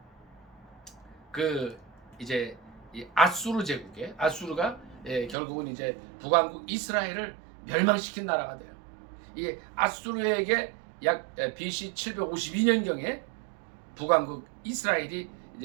그 이제 이 아수르 제국에 아수르가 결국은 이제 북왕국 이스라엘을 멸망시킨 나라가 돼요. 이 아수르에게 약 BC 752년경에 북왕국 이스라엘이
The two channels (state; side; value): drops out; left; at 5.4 s